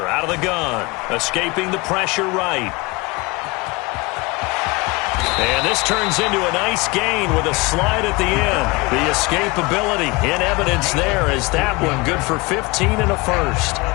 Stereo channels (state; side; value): quieter; right; 25.0 dB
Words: out of the gun. Escaping the pressure right. And this turns into a nice gain with a slide at the end. The escapability in evidence there as that one good for 15 and a 1st.